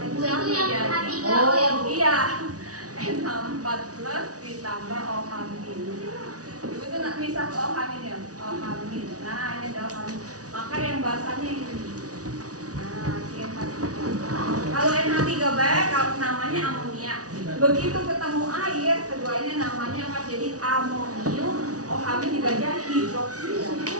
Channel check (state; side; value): late; left; 0.67 ms